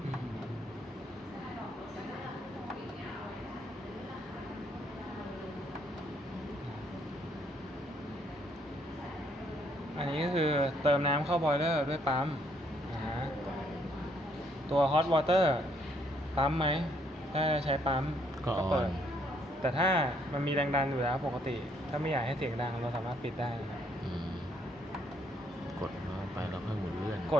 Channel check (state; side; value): normal; both; correlation 0.69